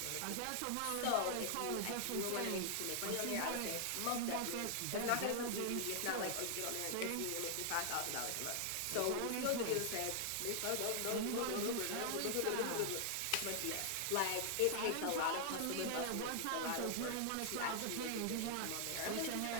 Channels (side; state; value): both; different; correlation 0.00